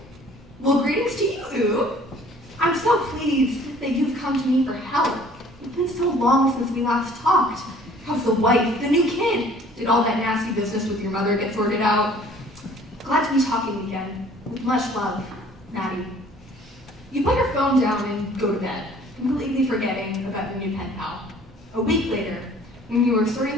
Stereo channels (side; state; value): both; normal; correlation 0.53